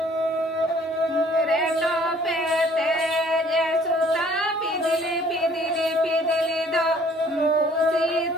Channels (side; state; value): both; normal; correlation 0.57